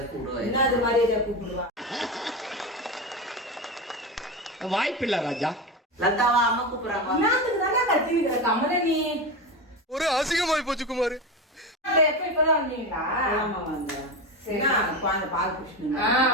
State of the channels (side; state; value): both; normal; correlation 0.20